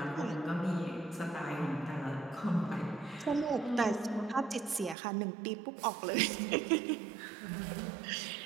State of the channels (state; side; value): drops out; left; at 5.0 s